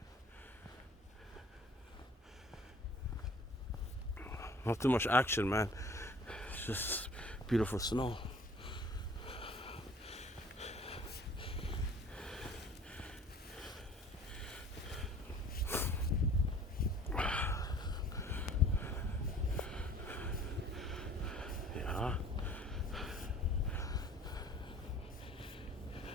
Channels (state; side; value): normal; both; correlation 0.50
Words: Not too much action, man. It's just beautiful snow. Yeah.